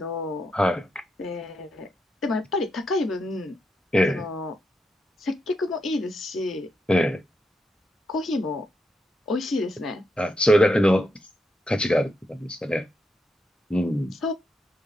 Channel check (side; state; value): both; normal; correlation 0.83